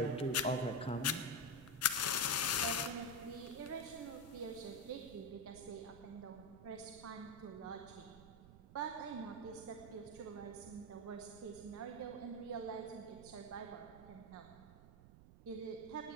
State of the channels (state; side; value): noise; right; rumble, 17 dB below the sound